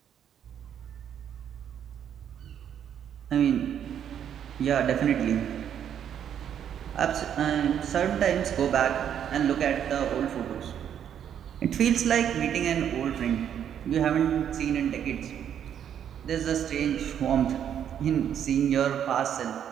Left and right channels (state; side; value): quieter; left; 9.2 dB